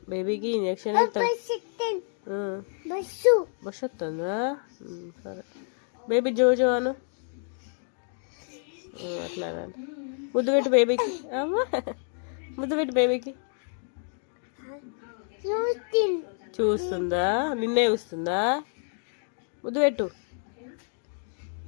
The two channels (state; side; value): silent; right; 58 dB below the other